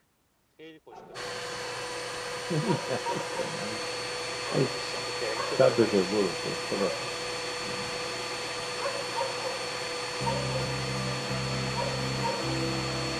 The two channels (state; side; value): identical; both; correlation 1.00